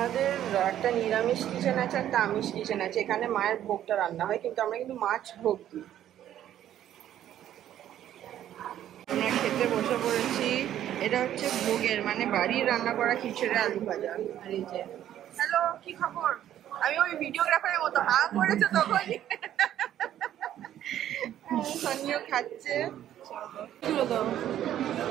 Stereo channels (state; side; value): quieter; left; 11.5 dB